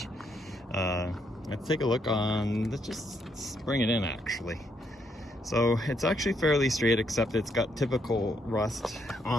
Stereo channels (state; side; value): normal; both; correlation 0.75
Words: Let's take a look on, let's just bring it in actually. So it's actually fairly straight, except it's got typical rust